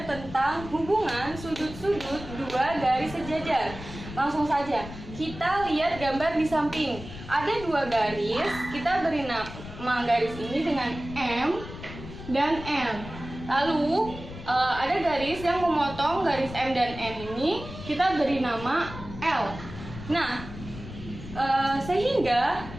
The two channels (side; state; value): left; noise; rumble, 12 dB below the sound